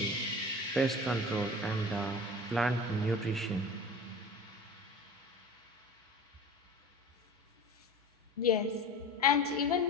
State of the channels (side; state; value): both; normal; correlation 0.37